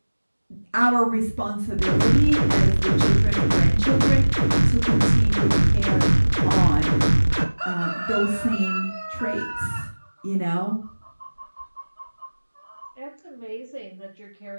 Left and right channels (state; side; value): inverted; both; correlation -1.00